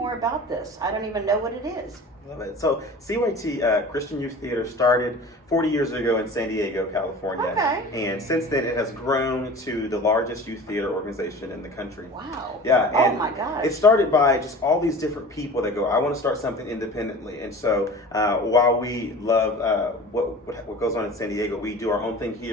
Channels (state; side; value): normal; both; correlation 0.39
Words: about this. I don't even know what it is. Love it. So CYT, Christian Youth Theater, started 40 years ago in San Diego, California. Okay. And since then it has grown to the largest youth theater organization in the country. Wow. Yeah. And oh my gosh. It started by just all these different people that go, I want to start something independently. And so while we love what goes on in San Diego, we do our own thing